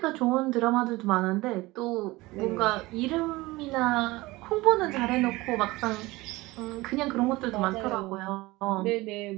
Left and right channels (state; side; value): quieter; left; 20.6 dB